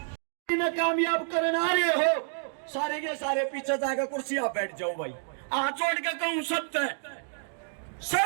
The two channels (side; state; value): left; silent; digital silence